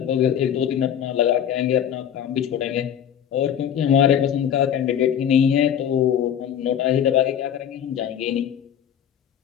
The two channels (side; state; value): right; quieter; 9.3 dB